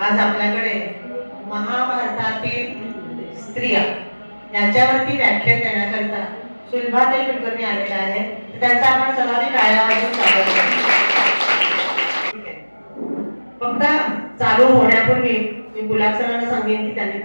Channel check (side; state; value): both; inverted; correlation -1.00